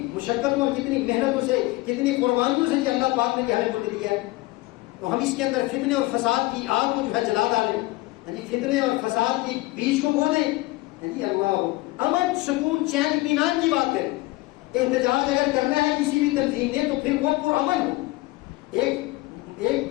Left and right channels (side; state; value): right; quieter; 20.5 dB